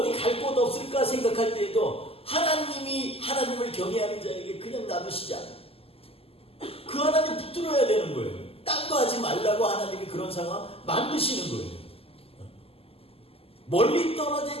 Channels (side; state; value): right; late; 0.28 ms